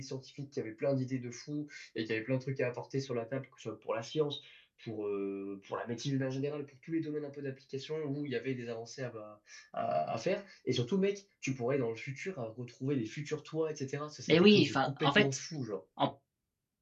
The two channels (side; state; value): both; identical; correlation 1.00